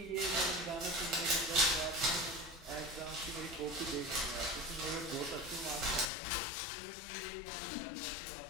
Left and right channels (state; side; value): drops out; right; at 6.1 s